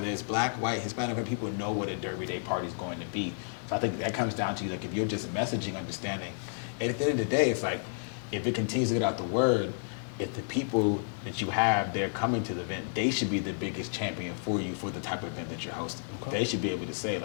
it's black, white, Hispanic, people know what a Derby Day party is going to be. So I think that comes down to, like, if you're just messaging, understanding, and at the end of the day, it's like, if it continues to get out the word, if the people that you have, they're coming to the event, they should be the biggest champion for you for the type of event that you're hosting. They should be able to say,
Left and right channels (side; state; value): right; silent; digital silence